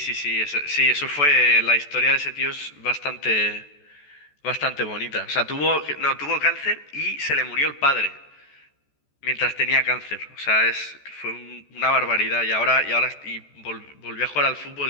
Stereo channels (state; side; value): late; right; 14 ms